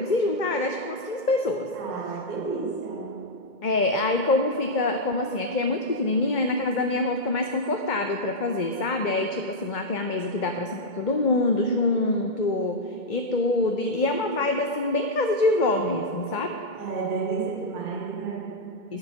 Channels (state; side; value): late; right; 2.2 ms